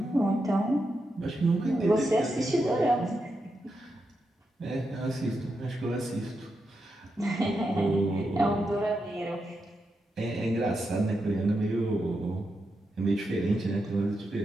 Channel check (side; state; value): both; normal; correlation 0.86